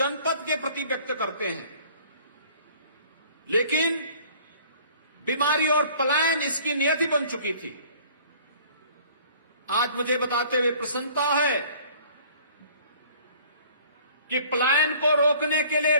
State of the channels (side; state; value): both; inverted; correlation -0.52